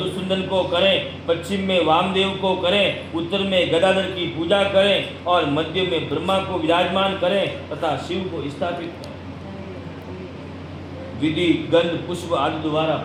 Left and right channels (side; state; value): both; identical; correlation 1.00